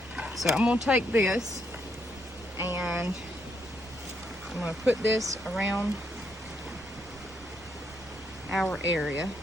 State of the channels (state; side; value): noise; right; rumble, 23 dB below the sound